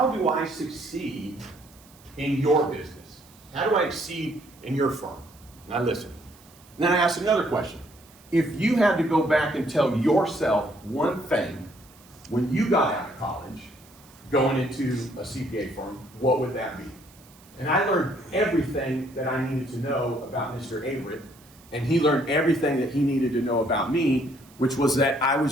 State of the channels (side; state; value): right; noise; hiss, 26 dB below the sound